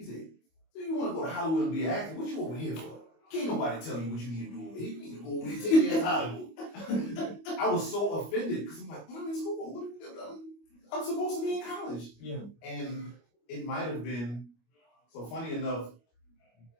said, "So you want to go to Hollywood and be an actor? What you over here for? Can't nobody tell you what you need to do over here. You need to go over here and take your ass to Hollywood." I was so offended because I'm like, I'm in school. I'm supposed to be in college. Yeah. And it might have been, so funny enough,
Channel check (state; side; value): late; right; 25 ms